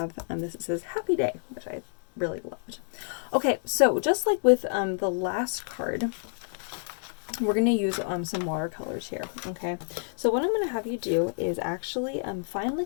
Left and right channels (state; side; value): silent; right; digital silence